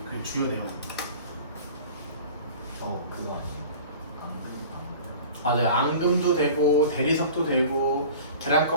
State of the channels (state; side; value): inverted; both; correlation -0.41